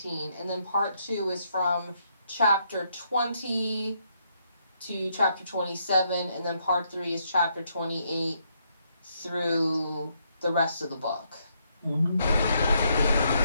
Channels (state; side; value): inverted; both; correlation -0.75